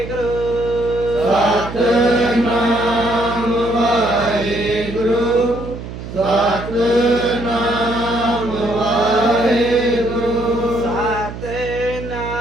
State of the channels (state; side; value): noise; right; hum, 10 dB below the sound